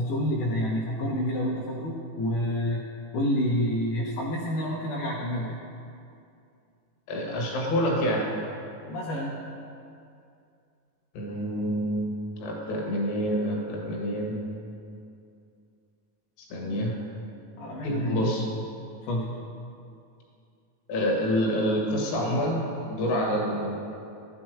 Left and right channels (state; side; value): late; right; 18 ms